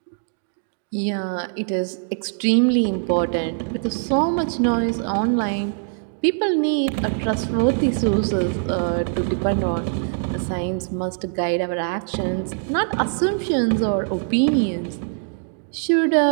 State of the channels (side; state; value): left; silent; digital silence